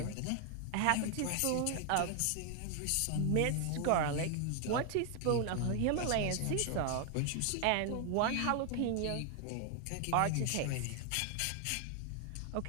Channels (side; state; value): both; different; correlation 0.00